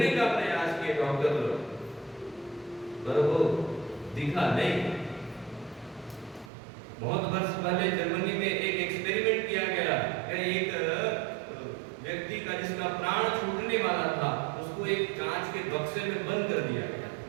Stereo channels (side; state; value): left; drops out; at 6.5 s